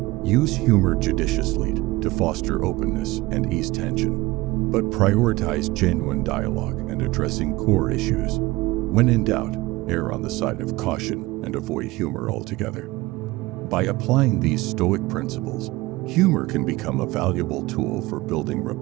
Use humor judiciously to foster openness and ease tension, but prioritize genuine dialogue and addressing core issues. When in doubt, err on the side of caution and avoid humor altogether. By applying these Stoic principles, humor can become a valuable tool for building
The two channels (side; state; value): left; quieter; 20.1 dB